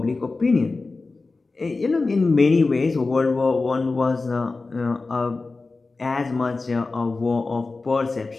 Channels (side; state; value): right; quieter; 3.7 dB